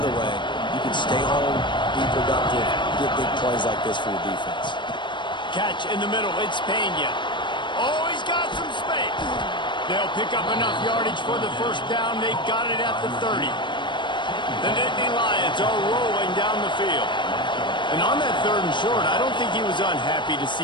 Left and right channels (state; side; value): late; right; 0.23 ms